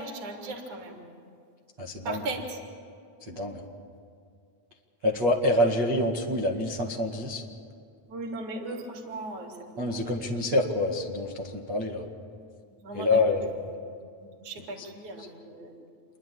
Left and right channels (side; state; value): left; late; 8.5 ms